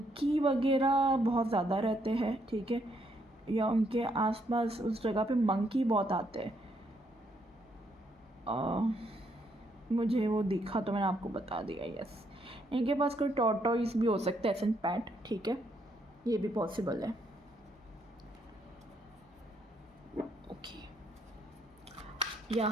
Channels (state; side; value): normal; both; correlation 0.73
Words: वगैरह बहुत ज़्यादा रहते हैं, ठीक है, या उनके आसपास उस जगह पे मंकी बहुत आते हैं। मुझे वो दिखा तो मैंने आपको बता दिया। यस, इनके पास कोई टॉर्टोइस भी हो सकता है, एसन पैट, ठीक है, ये भी पॉसिबल है, ओके।